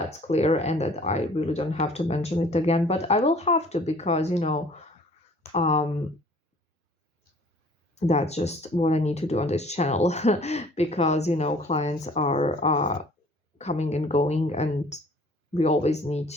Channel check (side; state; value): both; normal; correlation 0.53